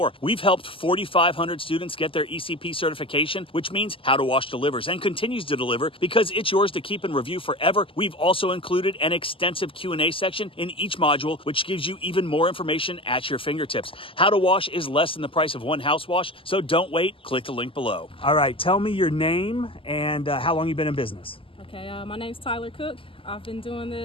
We've helped 4,500 students get their ECP certification, which means How to Wash delivers and continues to deliver because it's yours to keep and review forever. We've also included an extensive Q&A section in each module, which gives you even more information at your fingertips. How to Wash is less than the price of one house wash, so don't wait. Click the link below. All right, tell me your name and how long you've been in business. Okay, my name's Tyler Cook. I've been doing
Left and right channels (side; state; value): right; late; 0.26 ms